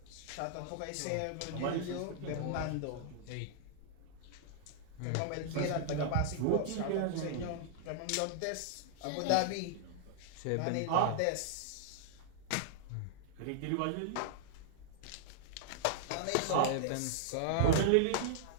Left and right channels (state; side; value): different; both; correlation -0.01